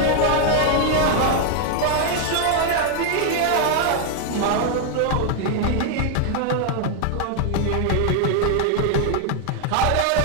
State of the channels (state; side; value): different; both; correlation 0.00